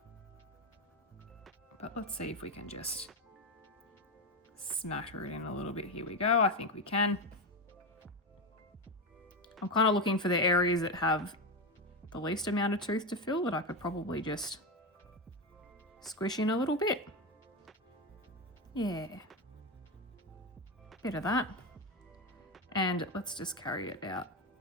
But let's see if we can just smatter it in a little bit. Here we go. I think we can. I'm kind of looking for the areas that have the least amount of tooth to fill that I could probably just squish in a little bit. Yeah, bit of that. And let's just carry it out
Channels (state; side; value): normal; both; correlation 0.14